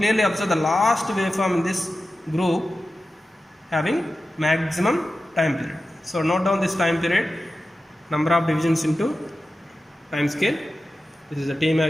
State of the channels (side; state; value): both; normal; correlation 0.93